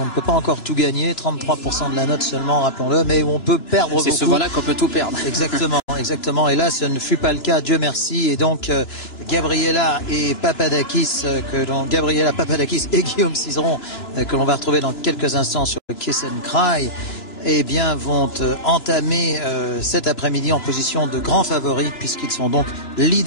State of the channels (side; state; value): right; late; 3.0 ms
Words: ne peut pas encore tout gagner, 33% de la note seulement, rappelons-le, mais où on peut perdre beaucoup. C'est souvent-là qu'on peut tout perdre. Exactement, exactement. Et là, ce ne fut pas le cas, Dieu merci. Et donc, Gabriela Papadakis et Guillaume Cizeron, que l'on va retrouver dans quelques instants sur le Kiss and Cry, eh bien, vont entamer cet après-midi en position de grands favoris, puisqu'ils sont donc